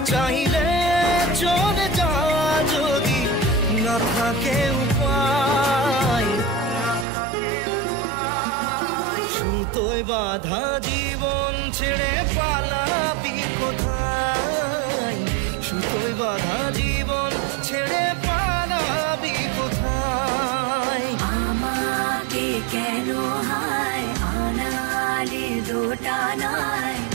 চাইলে চলে যা যদি না থাকে উপায় সুতোয় বাঁধা জীবন ছেড়ে পালাবি কোথায় সুতোয় বাঁধা জীবন ছেড়ে পালাবি কোথায় আমাকে কেন হায় আনালে দোটানায়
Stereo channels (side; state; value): left; drops out; at 7.1 s